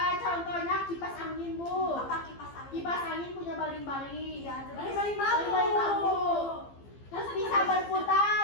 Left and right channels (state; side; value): late; right; 15 ms